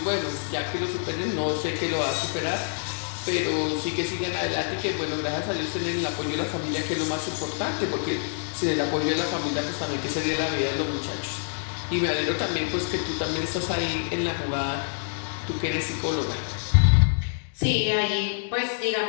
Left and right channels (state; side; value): silent; right; digital silence